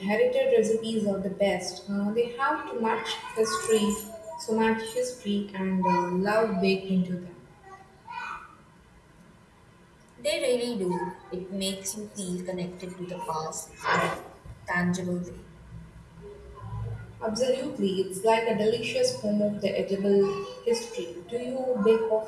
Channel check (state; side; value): identical; both; correlation 1.00